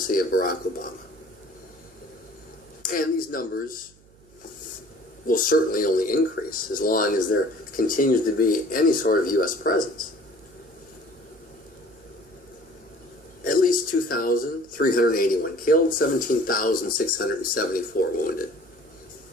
of Barack Obama. And these numbers will certainly only increase as long as there continues to be any sort of U.S. presence. At least 2,381 killed, 17,674 wounded.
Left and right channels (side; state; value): right; noise; hum, 28 dB below the sound